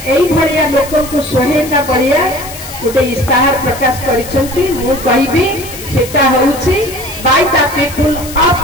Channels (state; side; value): noise; left; hiss, 13 dB below the sound